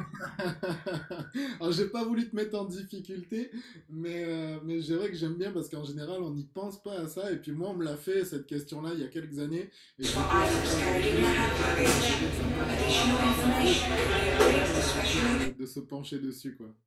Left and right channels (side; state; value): both; identical; correlation 1.00